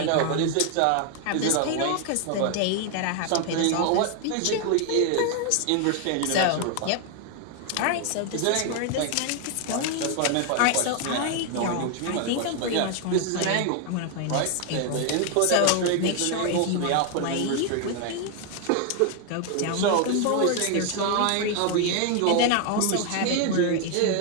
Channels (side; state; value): both; different; correlation 0.00